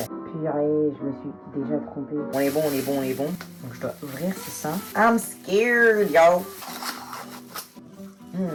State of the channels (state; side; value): identical; both; correlation 1.00